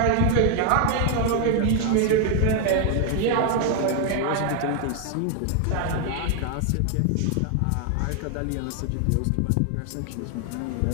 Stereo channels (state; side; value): different; both; correlation 0.00